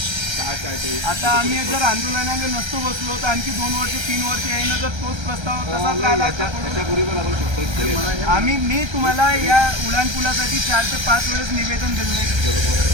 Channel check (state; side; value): late; left; 1.3 ms